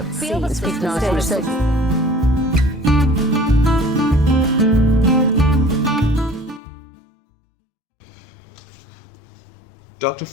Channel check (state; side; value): drops out; right; at 6.6 s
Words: Speak now to research. Dr.